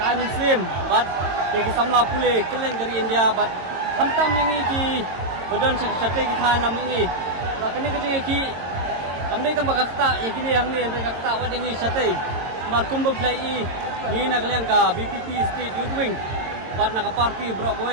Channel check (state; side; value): late; left; 22 ms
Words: muslim bat ki samla pule keleng dari India bat hamtam yang ki badan sate ki than nam ni ba kini ka jing ki kamdai tambah kakta ya kini yang ni andre kakta wa ding sate mar kumba plai ni nak liang ka BPP state youth wing bat nak party bro